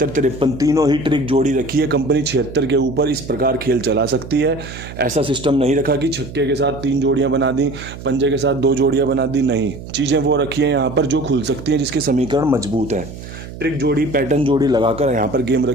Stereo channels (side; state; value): right; noise; hum, 13 dB below the sound